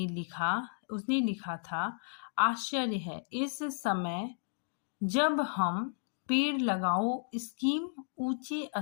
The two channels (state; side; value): silent; right; digital silence